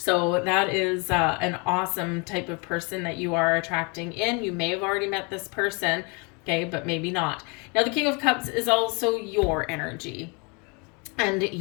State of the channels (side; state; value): right; quieter; 31.8 dB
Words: that is an awesome type of person that you are attracting in. You may have already met this person, okay, but maybe not. Now, the King of Cups is also your energy, and